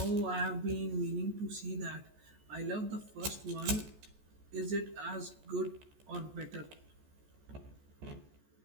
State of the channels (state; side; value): late; left; 14 ms